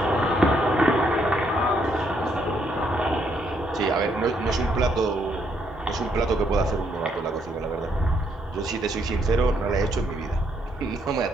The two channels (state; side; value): normal; both; correlation 0.73